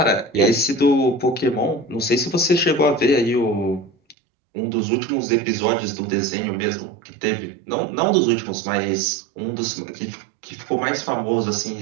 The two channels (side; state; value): left; drops out; at 4.2 s